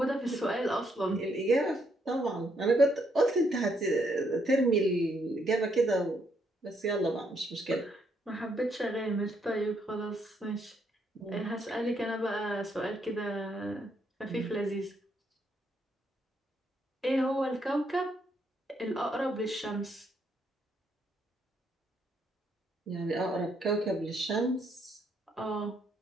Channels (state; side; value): normal; both; correlation 0.74